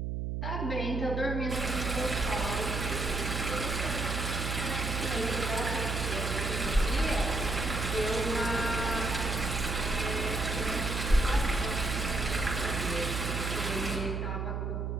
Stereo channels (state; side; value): noise; right; hum, 2 dB below the sound